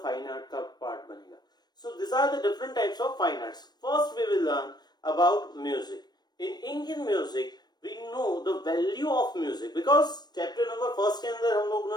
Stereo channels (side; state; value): right; late; 0.20 ms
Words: fine art का पार्ट बनेगा. So this are the different types of fine arts. First we will learn about music. In Indian music we know the value of music because chapter number first के अंदर हम